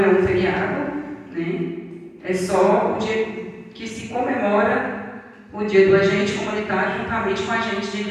é um feriado, né? É só o dia que se comemora o dia do agente comunitário juntamente com o agente de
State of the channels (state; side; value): identical; both; correlation 1.00